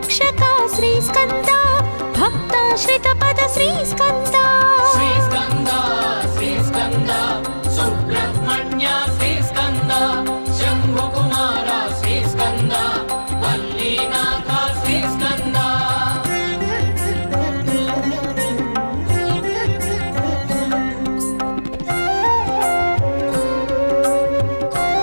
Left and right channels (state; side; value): inverted; both; correlation -1.00